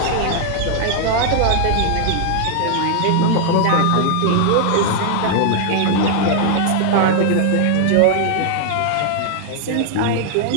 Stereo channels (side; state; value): both; different; correlation 0.00